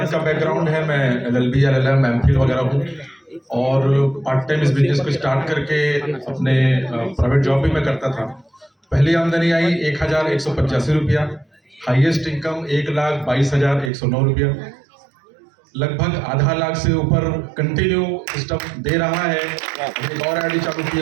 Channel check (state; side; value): drops out; left; at 13.9 s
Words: का बैकग्राउंड है, मैं LLB LLM MPhil वगैरह हूँ और पार्ट टाइम इस बिजनेस को स्टार्ट करके अपने प्राइवेट जॉब भी मैं करता था। पहली आमदनी आई 1185 रुपया, हाईएस्ट इनकम 1,22,109 रुपया, लगभग आधा लाख से ऊपर कंटिन्यू सिस्टम दे रहा है। एक और आईडी चालू की